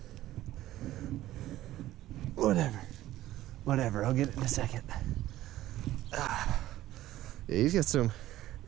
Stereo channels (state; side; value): quieter; left; 14.7 dB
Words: Whatever, I'll get it in a second. Yeah, he's got some